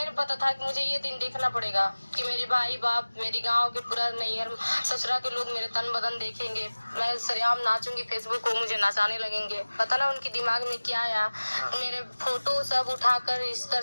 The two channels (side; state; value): both; inverted; correlation -1.00